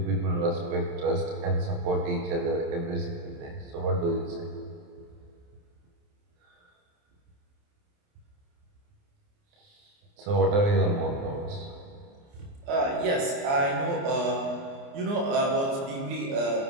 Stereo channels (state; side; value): late; left; 29 ms